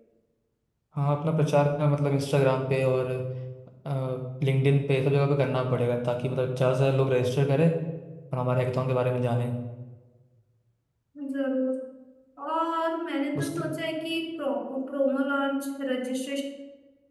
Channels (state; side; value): identical; both; correlation 1.00